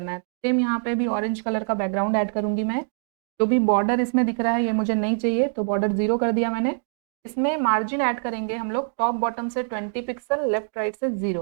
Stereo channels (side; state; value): left; silent; digital silence